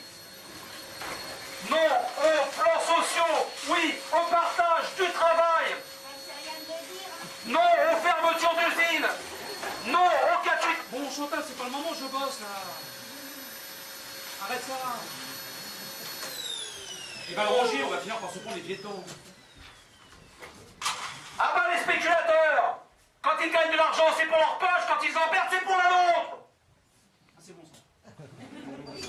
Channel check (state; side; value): identical; both; correlation 1.00